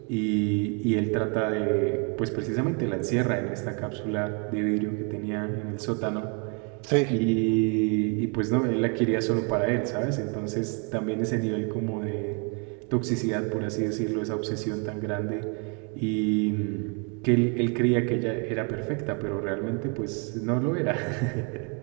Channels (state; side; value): quieter; left; 36.2 dB